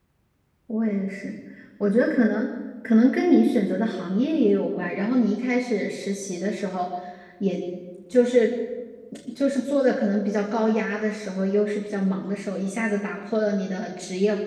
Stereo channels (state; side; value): identical; both; correlation 1.00